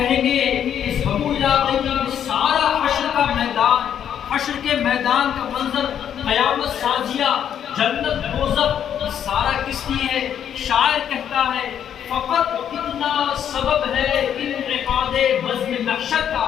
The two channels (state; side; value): quieter; right; 9.2 dB